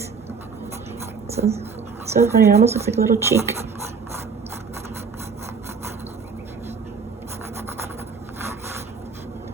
So funny, it almost looks like a little cheek.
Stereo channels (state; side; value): quieter; left; 5.5 dB